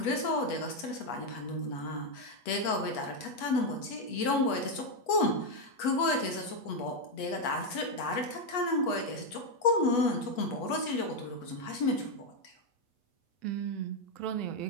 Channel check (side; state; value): right; late; 8.2 ms